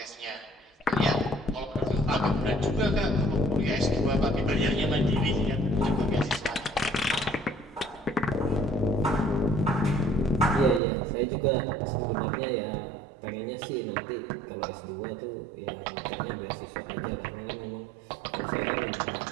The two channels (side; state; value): left; drops out; at 10.8 s